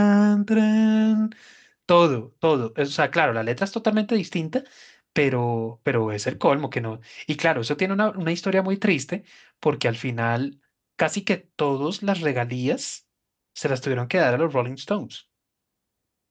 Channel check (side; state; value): both; identical; correlation 1.00